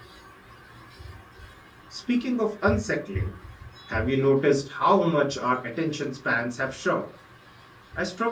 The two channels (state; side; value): identical; both; correlation 1.00